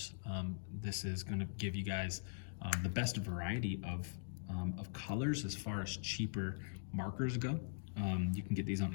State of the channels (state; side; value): silent; right; digital silence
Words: This is gonna give you guys the best variety of colors as far as cheaper markers go. You can get these on